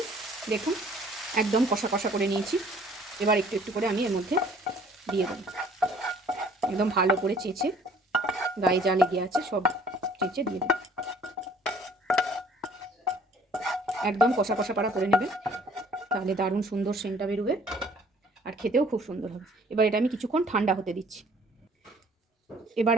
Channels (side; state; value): both; normal; correlation 0.56